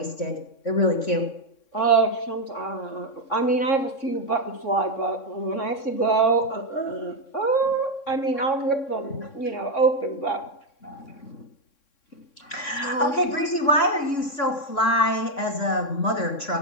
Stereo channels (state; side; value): late; right; 3.6 ms